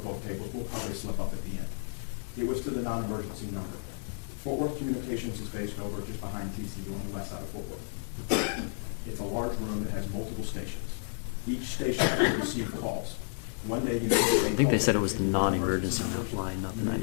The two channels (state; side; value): silent; right; digital silence